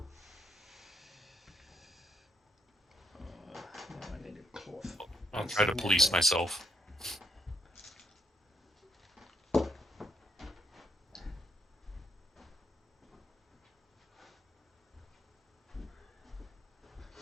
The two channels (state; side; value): normal; both; correlation 0.73